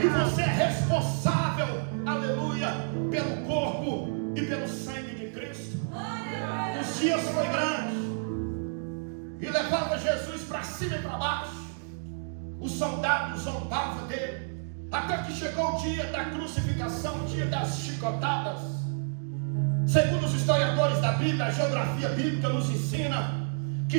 você é responsável, aleluia, pelo corpo e pelo sangue de Cristo. Os dias foi grande e levava Jesus para cima e para baixo. Os soldados zombavam dele, até que chegou o dia da crucificação, o dia das chicotadas. Segundo os historiadores da Bíblia, a geografia bíblica nos ensina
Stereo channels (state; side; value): silent; left; digital silence